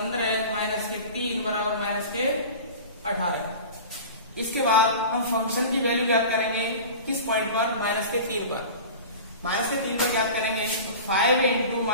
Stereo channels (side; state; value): both; inverted; correlation -0.36